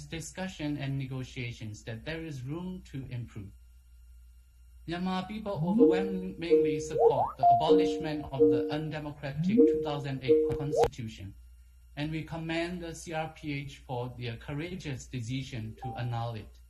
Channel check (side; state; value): both; identical; correlation 1.00